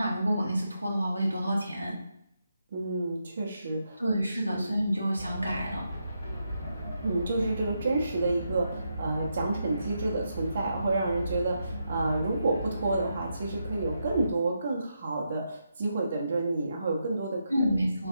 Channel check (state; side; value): inverted; both; correlation -0.83